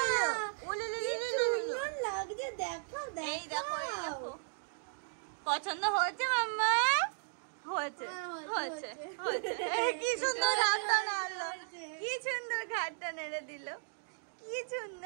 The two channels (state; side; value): silent; left; digital silence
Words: সুন্দর লাগছে, দেখো এই দেখো এই দেখো। দেখো, পছন্দ হয়েছে মাম্মা? হয়েছে হ্যাঁ, হয়েছে হয়েছে। হয়েছে। কি সুন্দর ঘাটটা নাড়লো, কি সুন্দর ঘাটটা নেড়ে দিল, কি